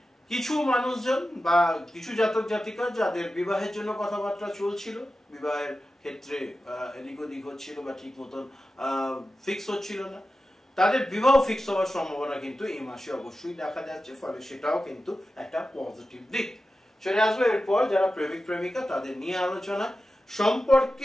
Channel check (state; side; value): normal; both; correlation 0.93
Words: কিছু মানুষজন বা কিছু জাতক জাতিকা যাদের বিবাহের জন্য কথাবার্তা চলছিল, বিবাহের ক্ষেত্রে এদিক ওদিক হচ্ছিল বা ঠিক মতন ফিক্স হচ্ছিল না, তাদের বিবাহ ফিক্স হওয়ার সম্ভাবনা কিন্তু এই মাসে অবশ্যই দেখা যাচ্ছে, ফলে সেটাও কিন্তু একটা পজিটিভ দিক। চলে আসবে এরপর যারা প্রেমিক প্রেমিকা, তাদের নিয়ে আলোচনা।